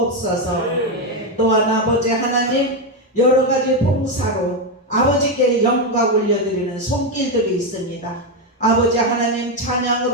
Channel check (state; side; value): normal; both; correlation 0.07